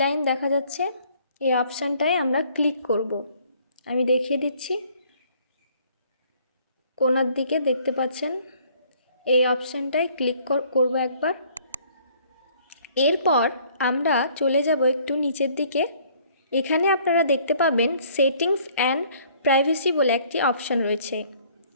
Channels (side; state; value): both; inverted; correlation -0.59